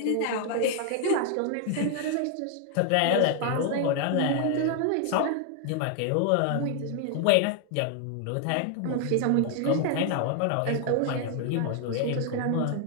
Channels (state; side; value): different; both; correlation 0.00